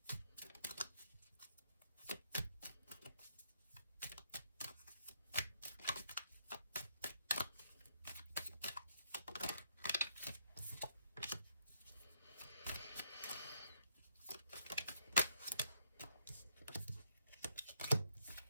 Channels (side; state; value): both; inverted; correlation -0.72